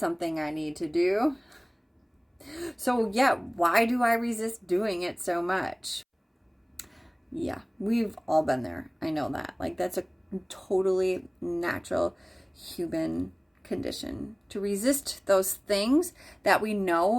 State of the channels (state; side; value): identical; both; correlation 1.00